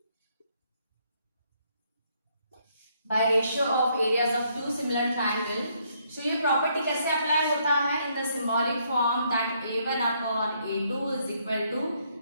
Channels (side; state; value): both; inverted; correlation -0.71